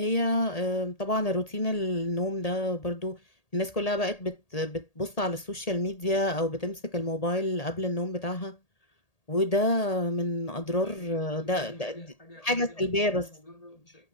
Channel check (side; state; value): right; late; 1.8 ms